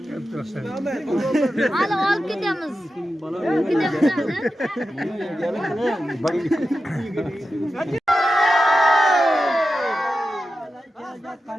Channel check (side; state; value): both; normal; correlation 0.91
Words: Hadi alıp gidiyoruz.